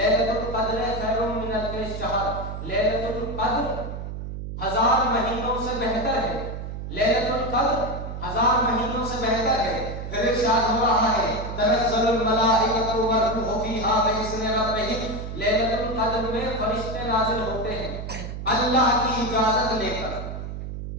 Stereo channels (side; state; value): right; noise; hum, 7 dB below the sound